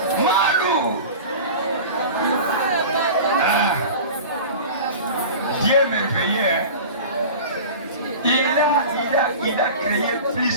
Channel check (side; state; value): both; inverted; correlation -0.35